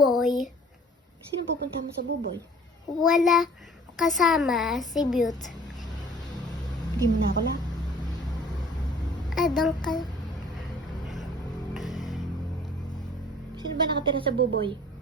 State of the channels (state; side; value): normal; both; correlation 0.51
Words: Sino pupunta mo sa buboy? Wala kasama si Beaut. Hindi mo na ako lang. Doon ka. Sino ba nakatira sa buboy?